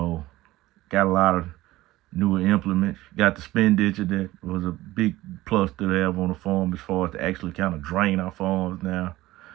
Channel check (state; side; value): quieter; left; 17.4 dB